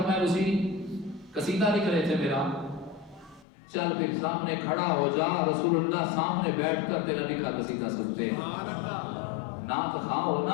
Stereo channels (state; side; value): drops out; right; at 3.5 s